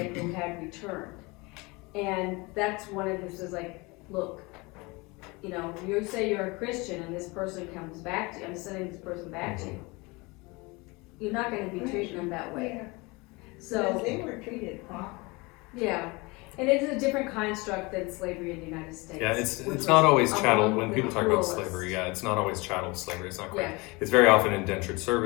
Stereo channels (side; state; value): right; quieter; 25.4 dB